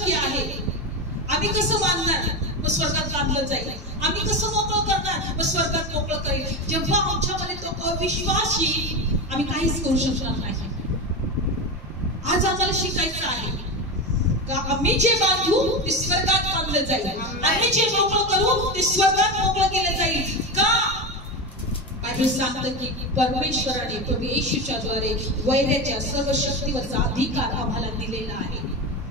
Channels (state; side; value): normal; both; correlation 0.20